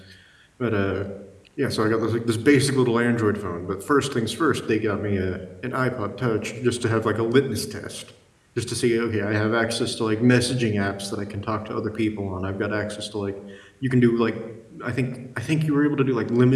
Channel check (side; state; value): both; identical; correlation 1.00